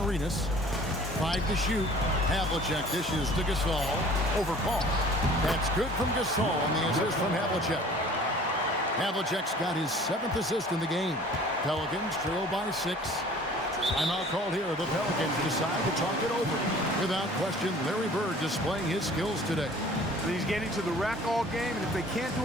5 to shoot. Havlicek dishes to Gasol. Over Paul. That's good from Gasol on the assist from Havlicek. Havlicek's got his 7th assist in the game. Pelicans trail by 6. Timeout called here. The Pelicans decide to talk it over. Without question, Larry Bird displaying his skills today. And he's getting to the rack all game, and if they can't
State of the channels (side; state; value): both; normal; correlation 0.49